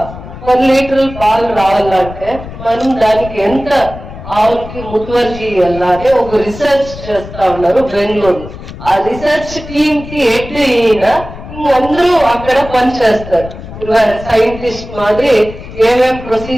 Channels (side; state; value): left; noise; rumble, 13 dB below the sound